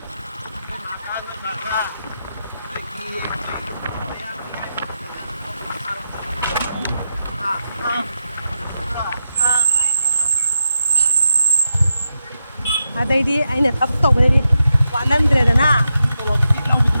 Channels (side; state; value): both; inverted; correlation -0.87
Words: Adai ai na tap to bari walan dre na